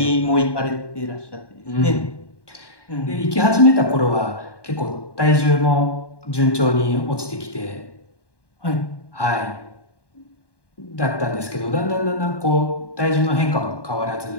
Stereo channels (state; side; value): late; right; 1.1 ms